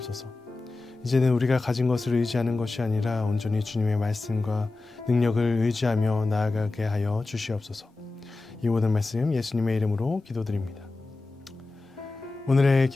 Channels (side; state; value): right; quieter; 3.4 dB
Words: 이제는 우리가 가진 것을 의지하는 것이 아니라 온전히 주님의 말씀과 능력을 의지하며 나아가게 하여 주시옵소서. 이 모든 말씀 예수님의 이름으로 기도드립니다. 오늘의